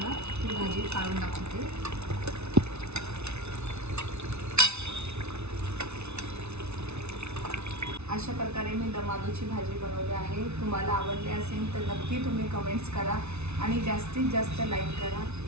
ती भाजी काढून दाखवते. अशा प्रकारे मी दम आलूची भाजी बनवली आहे. तुम्हाला आवडली असेल तर नक्की तुम्ही कमेंट्स करा आणि जास्तीत जास्त लाईक करा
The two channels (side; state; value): left; late; 0.81 ms